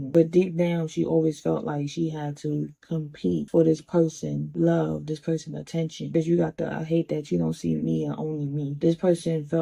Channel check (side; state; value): both; identical; correlation 1.00